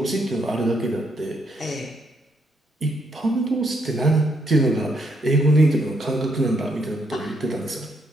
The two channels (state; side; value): normal; both; correlation 0.75